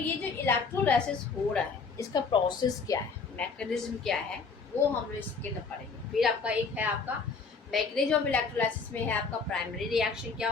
जो इलेक्ट्रोलाइसिस हो रहा है इसका प्रोसेस क्या है, मैकेनिज्म क्या है, वो हम लोग इसके अंदर पढ़ेंगे। फिर आपका एक है आपका मैकेनिज्म ऑफ इलेक्ट्रोलाइसिस में है आपका प्राइमरी रिएक्शन क्या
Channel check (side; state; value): right; quieter; 4.8 dB